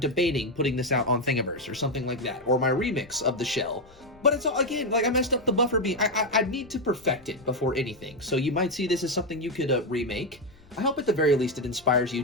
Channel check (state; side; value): noise; left; rumble, 27 dB below the sound